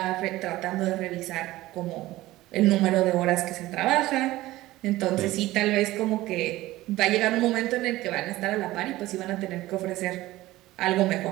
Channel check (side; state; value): left; quieter; 17.2 dB